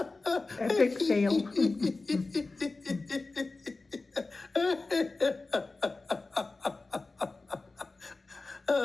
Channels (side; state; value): right; quieter; 3.5 dB